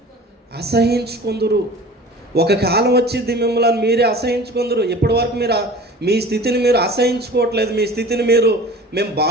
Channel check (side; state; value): both; normal; correlation 0.41